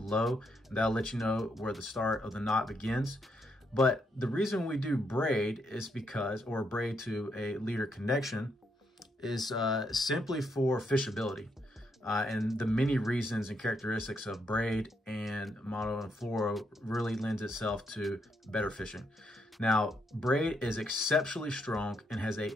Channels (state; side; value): normal; both; correlation 0.77